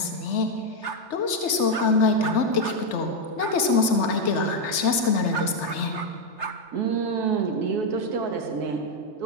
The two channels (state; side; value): late; right; 3.3 ms